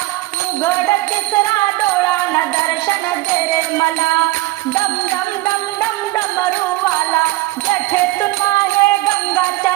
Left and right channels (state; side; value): quieter; left; 19.0 dB